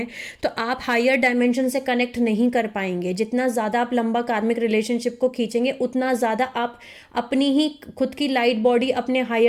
तो आप हायर डायमेंशन से कनेक्ट नहीं कर पाएंगे। जितना ज़्यादा आप लंबा कार्मिक रिलेशनशिप को खींचेंगे उतना ज़्यादा आप अपनी ही खुद की लाइट बॉडी, अपने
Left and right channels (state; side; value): identical; both; correlation 1.00